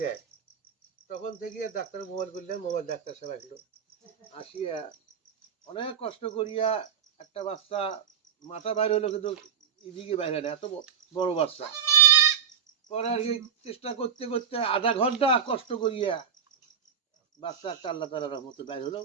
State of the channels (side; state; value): left; quieter; 7.5 dB